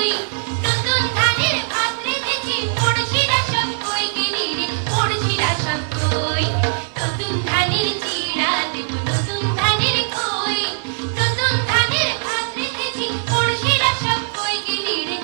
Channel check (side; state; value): left; silent; 66 dB below the other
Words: নতুন ধানের ভাত রেঁধেছি, পড়শিরা সব কই গেলি রে, পড়শিরা সব কই।